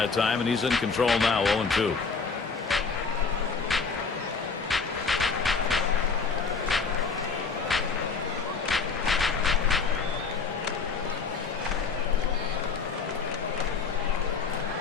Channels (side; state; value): right; quieter; 5.0 dB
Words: time, and he's in control now, 0-2.